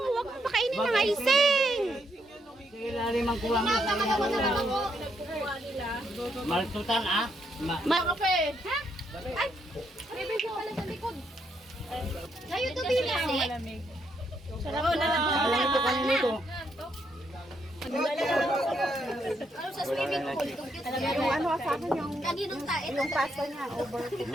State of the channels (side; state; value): both; normal; correlation 0.77